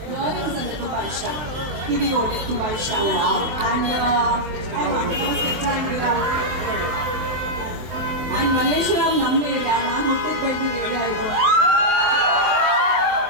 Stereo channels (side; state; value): left; late; 24 ms